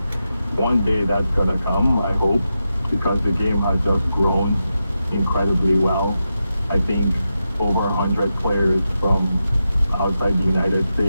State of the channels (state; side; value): inverted; both; correlation -0.88